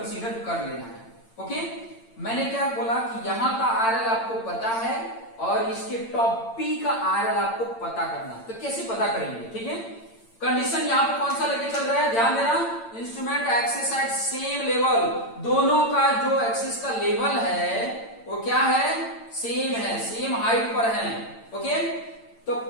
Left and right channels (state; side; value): late; right; 8.8 ms